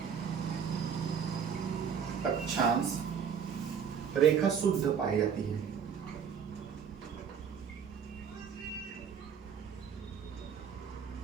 रेखा शुद्ध पाई जाती है।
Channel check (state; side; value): quieter; left; 7.3 dB